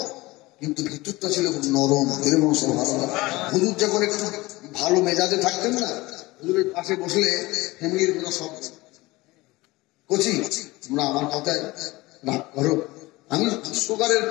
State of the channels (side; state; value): right; quieter; 20.9 dB